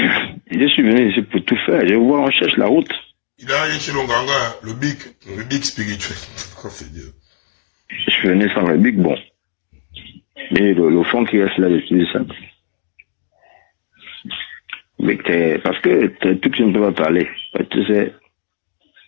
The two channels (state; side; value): silent; right; digital silence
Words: suis venu ici pour tout faire. Je vois, on cherche la route. Il a allé chez Longanga, le bic spirituel. Oh, c'est Dieu. Je suis venu sans le bic, bon. Mais le fond qui reste là, j'utilise ça. Mais parce que tout que je ne peux pas parler. Tu sais,